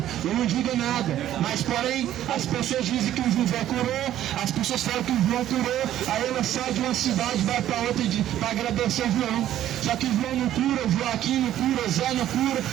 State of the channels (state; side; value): quieter; left; 12.2 dB